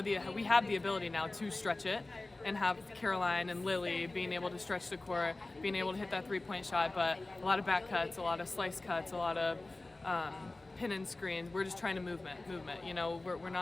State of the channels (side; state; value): right; quieter; 3.0 dB